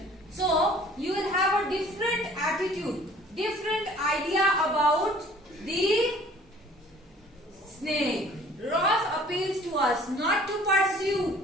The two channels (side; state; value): both; normal; correlation 0.52